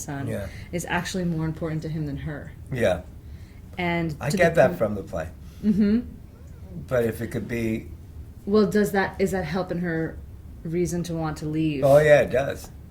is actually more important to him than her. Yeah. And I get that from the play. But if it could be... Well, is that helping her reason to want to leave? Oh, yeah, it does.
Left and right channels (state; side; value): identical; both; correlation 1.00